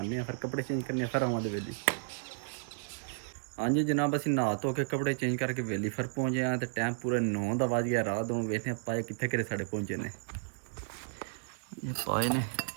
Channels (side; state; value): left; silent; digital silence